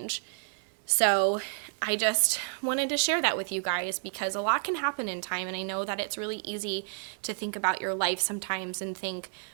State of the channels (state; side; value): silent; left; digital silence